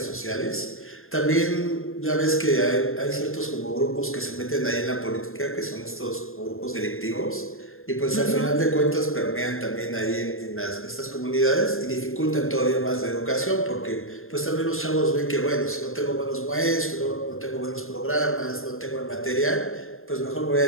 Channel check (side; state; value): right; late; 0.61 ms